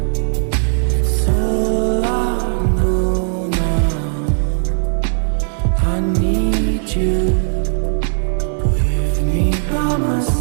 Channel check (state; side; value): silent; left; 64 dB below the other